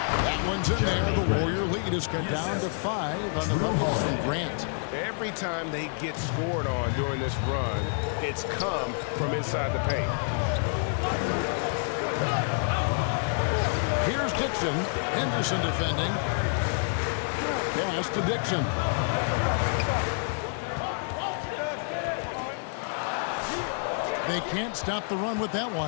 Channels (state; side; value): silent; right; 59 dB below the other